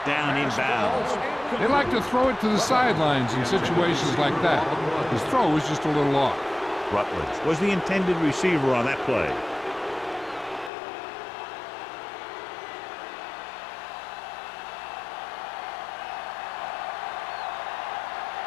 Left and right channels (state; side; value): drops out; right; at 10.7 s